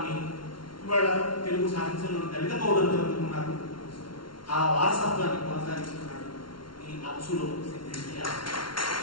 ఇవాళ తెలుగు సాహిత్యంలో దళిత కవులందరూ అందుకున్నారు. ఆ వారసత్వాన్ని కొనసాగిస్తున్నాడు ఈ అచ్చులో సిద్ధించే.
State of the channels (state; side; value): late; right; 0.73 ms